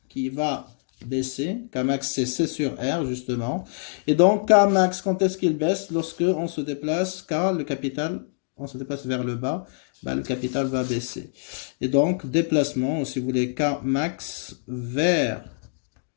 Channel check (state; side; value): silent; right; digital silence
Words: qui va baisser. Kmax c'est C sur R justement. Et donc Kmax, quand est-ce qu'il baisse? Lorsque on se déplace, car le capital, on se déplace vers le bas, ben, le capital va baisser. Et donc déplacement, si vous voulez, Kmax vers